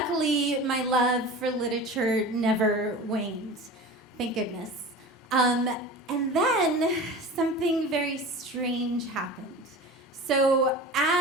my love for literature never waned. Thank goodness. And then something very strange happened. So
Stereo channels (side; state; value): both; normal; correlation 0.34